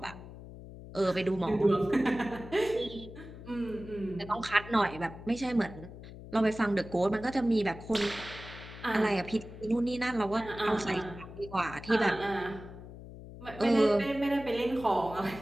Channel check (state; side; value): noise; left; hum, 14 dB below the sound